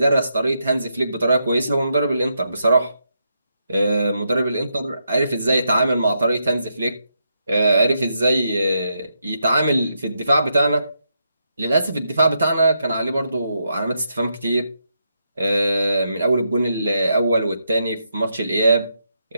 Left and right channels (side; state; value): both; inverted; correlation -0.81